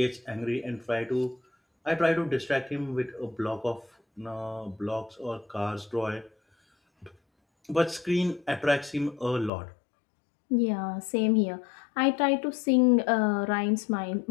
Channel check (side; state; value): right; drops out; at 9.5 s